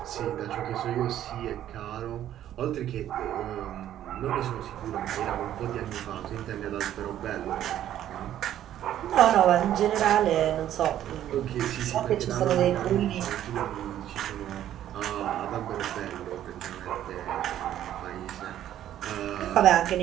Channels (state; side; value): quieter; left; 11.6 dB